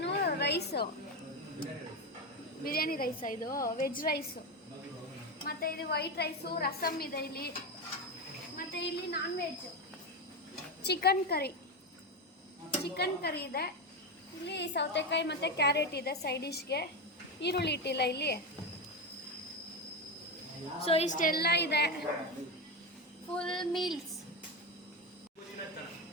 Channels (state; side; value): normal; both; correlation 0.14